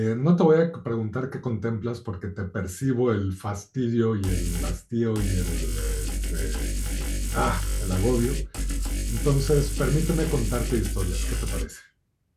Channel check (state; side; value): identical; both; correlation 1.00